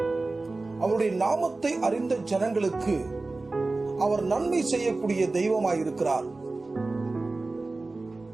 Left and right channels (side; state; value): left; quieter; 3.3 dB